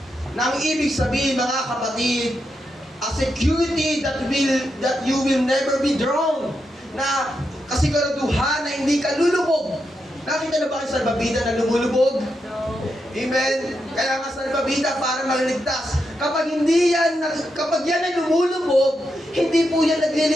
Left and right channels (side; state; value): both; normal; correlation 0.84